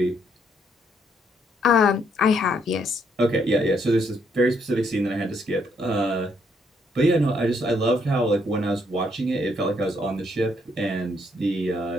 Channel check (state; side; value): normal; both; correlation 0.72